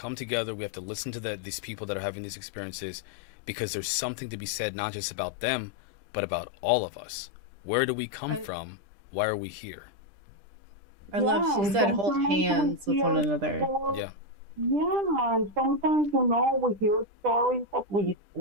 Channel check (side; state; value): left; late; 10 ms